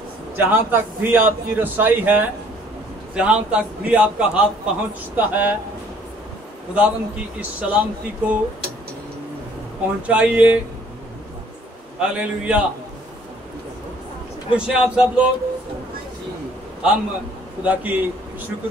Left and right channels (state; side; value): normal; both; correlation 0.59